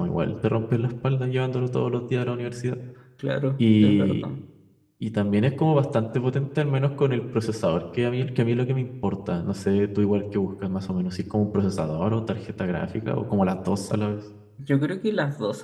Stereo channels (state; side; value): identical; both; correlation 1.00